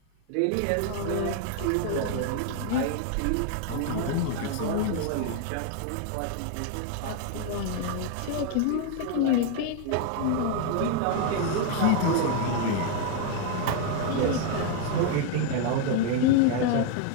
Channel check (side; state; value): both; different; correlation 0.00